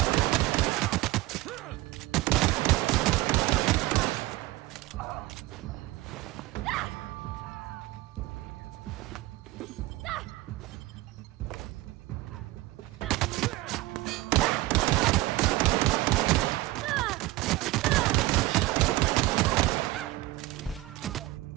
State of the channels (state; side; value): quieter; left; 18.2 dB